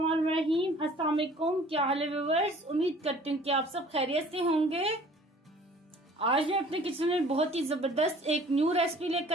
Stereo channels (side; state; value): both; normal; correlation 0.51